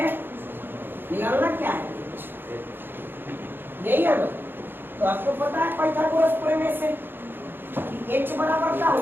निकालना क्या है यही है ना तो आपको पता है पाइथागोरस प्रमेय से कि h बराबर क्या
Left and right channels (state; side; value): late; left; 0.10 ms